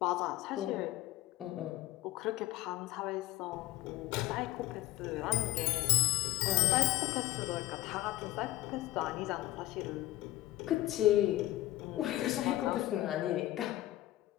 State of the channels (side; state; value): right; quieter; 16.2 dB